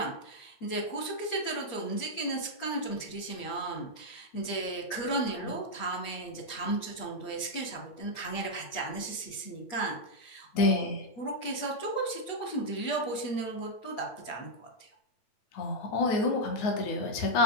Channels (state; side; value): late; right; 8.9 ms